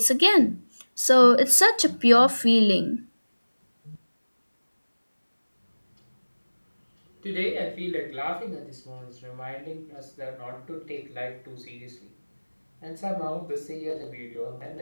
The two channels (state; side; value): inverted; both; correlation -1.00